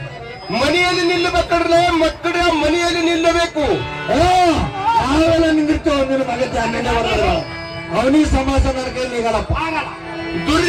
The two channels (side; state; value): both; identical; correlation 1.00